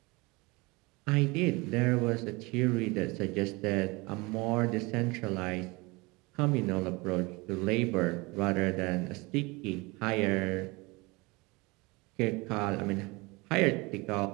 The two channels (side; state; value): left; quieter; 25.1 dB